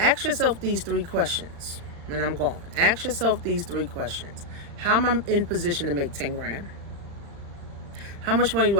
yourself these 3 questions, and I'm gone. Ask yourself these 3 questions. How am I in position to make 10 grand? How much money do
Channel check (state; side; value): late; left; 36 ms